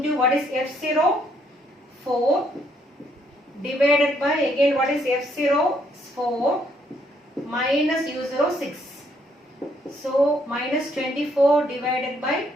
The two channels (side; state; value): both; normal; correlation 0.70